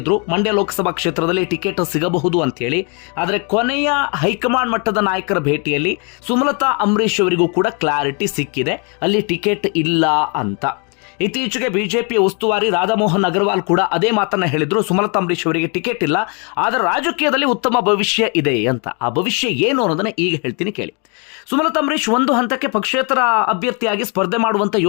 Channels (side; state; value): right; quieter; 35.0 dB